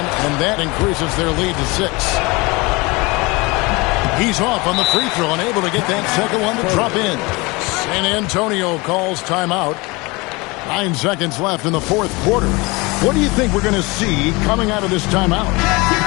and that increases their lead to 6. He's off on the free throw and able to get that second one to drop in. San Antonio calls timeout. 9 seconds left in the fourth quarter. What do you think we're going to see coming out of this timeout?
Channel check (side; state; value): right; quieter; 25.2 dB